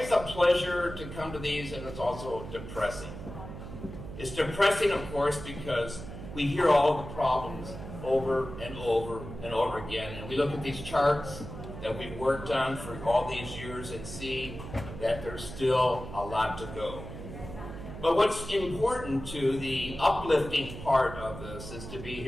a pleasure to come to these, and it's also depressing. It's depressing, of course, because we hear all the problems over and over and over again, and we look at these charts that we've worked on for all these years and see that there's still a lot to go. But what's important to the uplifting part of this is to be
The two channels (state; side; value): noise; right; hum, 11 dB below the sound